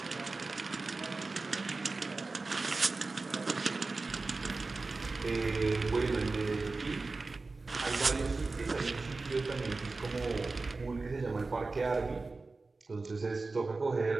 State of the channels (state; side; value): quieter; left; 3.7 dB